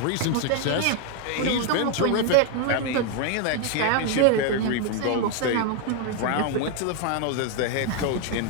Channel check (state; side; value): different; both; correlation 0.01